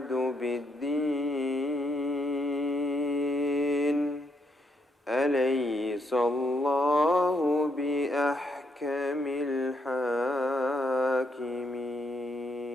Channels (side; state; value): both; normal; correlation 0.77